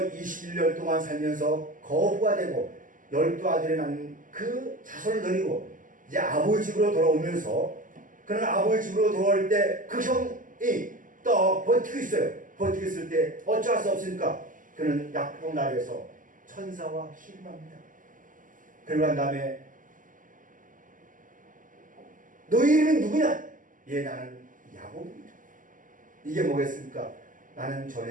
21년 동안 살면서 거부가 되고 12아들이 낳는 그 자손을 데리고 이제 아버지 집으로 돌아오면서 그는 아버지 집으로 돌아올 때 그 형이 또 버티고 있어요. 버티고 있을 때 어쩔 수 없으니까 그는 약봉 나라에서 천사와 씨름합니다. 그러고 난 다음에 너희 이름은 누구냐? 예, 나는 야곱입니다. 이게 뭐겠습니까? 나는 전에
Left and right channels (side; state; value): left; late; 0.38 ms